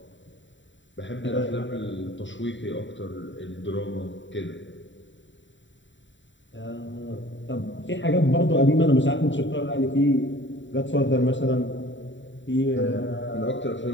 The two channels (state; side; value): late; right; 0.54 ms